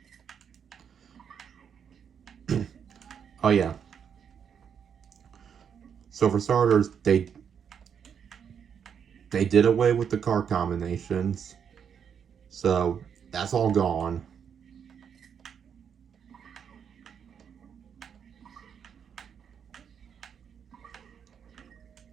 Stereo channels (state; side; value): quieter; left; 7.6 dB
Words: Oh yeah. So for starters, they did away with the car combinations. So that's all gone.